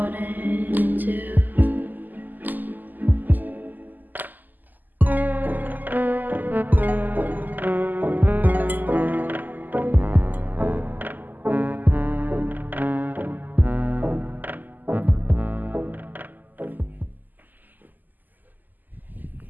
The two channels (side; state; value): left; late; 0.085 ms